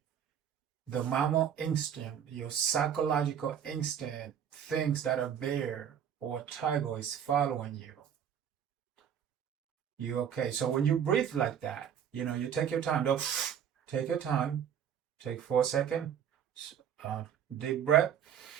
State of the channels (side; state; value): left; quieter; 8.9 dB